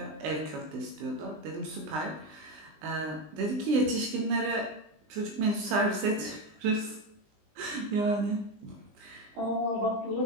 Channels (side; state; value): left; late; 20 ms